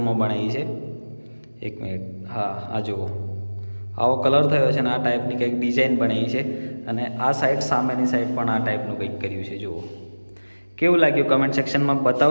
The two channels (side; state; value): both; inverted; correlation -1.00